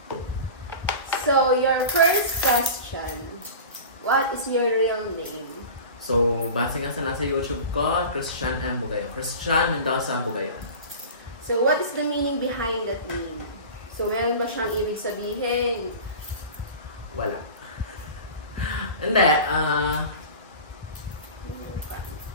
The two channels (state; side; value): inverted; both; correlation -0.35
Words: So, your first question. What is your real name? So, base nga sa nasa YouTube ko, Christian M. Bugayon. Christian Mendoza Bugayon. So, what is the meaning behind that name? So, meron ba siyang ibig sabihin? Wala. Hindi,